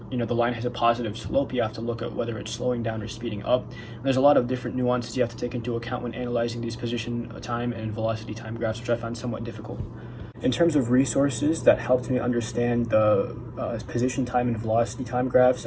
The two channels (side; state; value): both; identical; correlation 1.00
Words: the line has a positive slope, you have to look at whether it's slowing down or speeding up. And there's a lot of different nuances you have to take into account when analyzing these position time and velocity time graphs, which I found somewhat difficult. In terms of resources that helped me understand the position time and velocity time graphs,